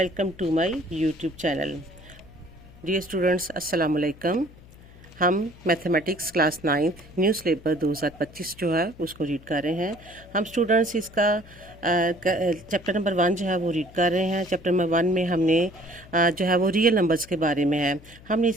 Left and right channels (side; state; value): left; noise; hum, 22 dB below the sound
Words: to my YouTube channel. Dear students, अस्सलाम वालेकुम। हम mathematics class 9th new syllabus 2025 जो है उसको रीड कर रहे हैं। हम स्टूडेंट्स इसका चैप्टर नंबर 1 जो है वो रीड कर रहे हैं। चैप्टर नंबर 1 में हमने जो है वो रियल नंबर्स के बारे में है। हमने